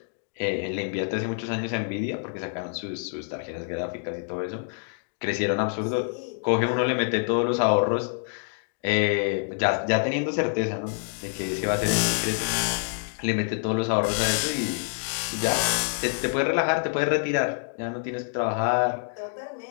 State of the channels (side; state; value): right; silent; digital silence